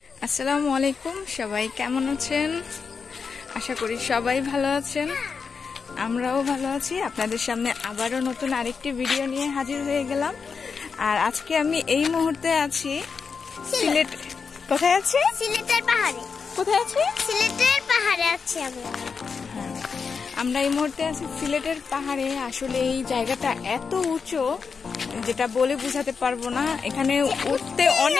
আসসালামু আলাইকুম, সবাই কেমন আছেন? আশা করি সবাই ভালো আছেন। আমরাও ভালো আছি। আপনাদের সামনে আবারও নতুন আরেকটি ভিডিও নিয়ে হাজির হয়ে গেলাম। আর আজকে আমি এই মুহূর্তে আছি সিলেট। কোথায় আছি? সিলেটের পাহাড়ে। কোথায় আছি? সিলেটের পাহাড়ে আছি আমরা। আমরা এই মুহূর্তে আছি সিলেটের পাহাড়ে। আসলে এই জায়গাটা এত উঁচু যেটা বলে বোঝাতে পারবো না। এখানে উঠতে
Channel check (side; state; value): right; quieter; 5.5 dB